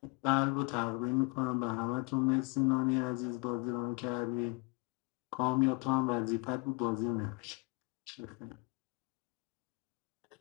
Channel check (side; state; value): right; quieter; 30.1 dB